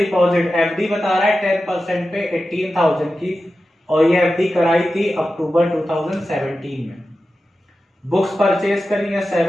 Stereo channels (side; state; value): both; normal; correlation 0.93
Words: FD बता रहा है 10% पे 18,000 की, और ये एफडी कराई थी अक्टूबर 2017 में. बुक्स परचेज करी है